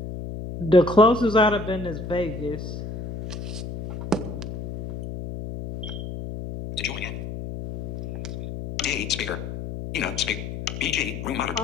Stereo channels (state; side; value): noise; left; hum, 7 dB below the sound